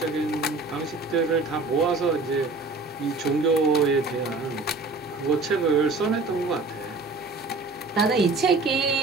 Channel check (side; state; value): left; quieter; 3.5 dB